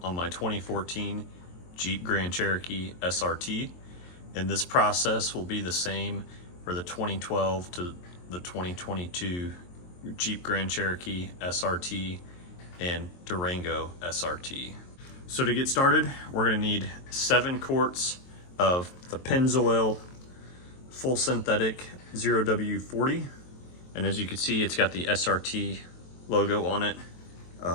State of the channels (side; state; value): right; late; 23 ms